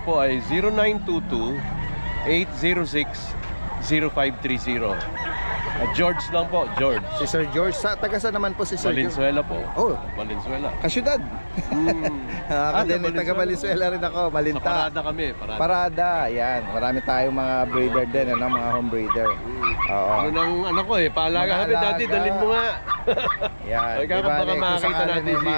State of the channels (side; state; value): both; inverted; correlation -1.00